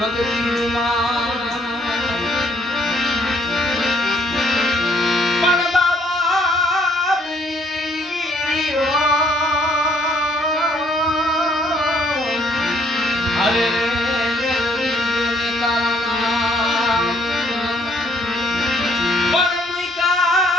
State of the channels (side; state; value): both; normal; correlation 0.66